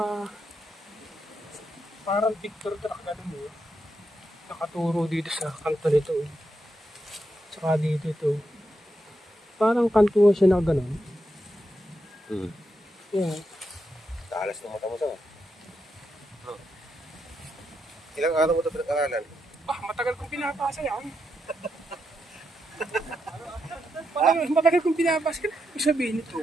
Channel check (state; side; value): normal; both; correlation 0.83